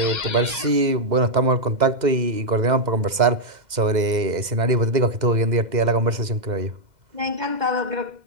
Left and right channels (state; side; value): late; left; 2.1 ms